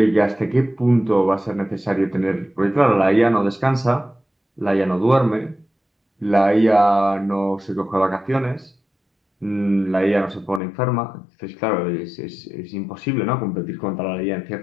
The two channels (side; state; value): right; drops out; at 10.6 s